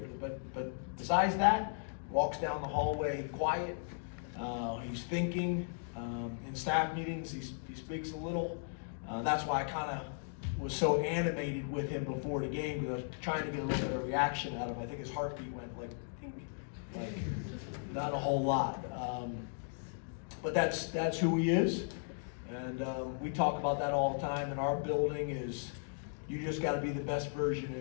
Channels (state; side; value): silent; right; digital silence